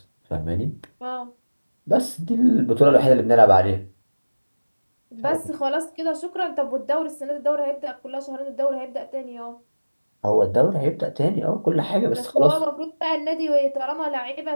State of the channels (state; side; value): inverted; both; correlation -1.00